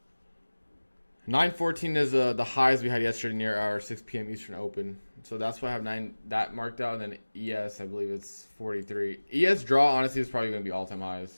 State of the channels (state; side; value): inverted; both; correlation -1.00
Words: $9.14 is the highs we had yesterday near our 6 p.m. Eastern Open. So that's why I have 9 that marked out. And then ES, I believe it's 43. ES draw, honestly, is probably going to be all-time